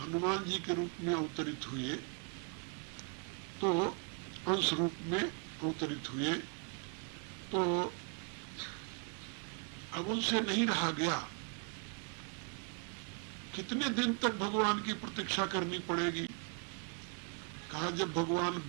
जी के रूप में अवतरित हुए, तो अंश रूप में अवतरित हुए, तो अब उनसे नहीं रहा गया। कितने दिन तक भगवान की प्रतीक्षा करनी पड़ेगी? कहा जब भगवान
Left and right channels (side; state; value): left; quieter; 35.9 dB